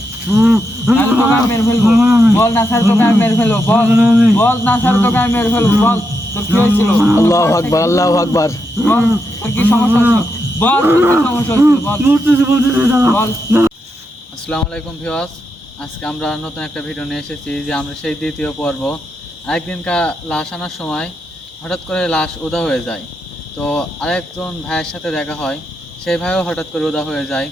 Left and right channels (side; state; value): both; normal; correlation 0.84